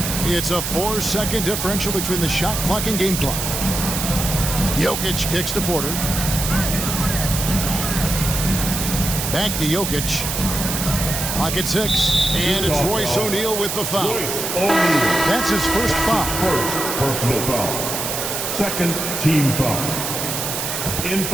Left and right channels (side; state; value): right; noise; hiss, 3 dB below the sound